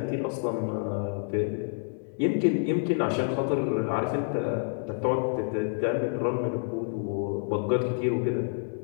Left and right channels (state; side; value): silent; right; 59 dB below the other